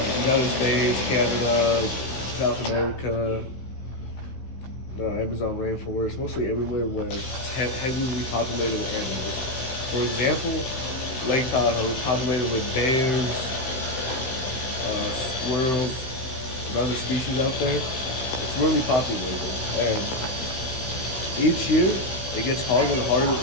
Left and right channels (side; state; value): right; late; 16 ms